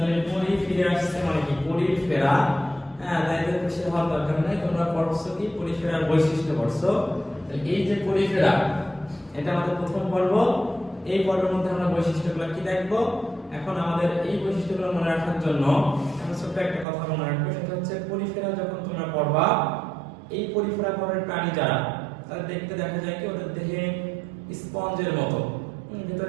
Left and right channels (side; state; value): left; drops out; at 16.9 s